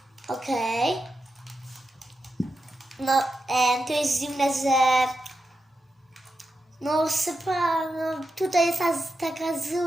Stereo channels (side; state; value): both; normal; correlation 0.89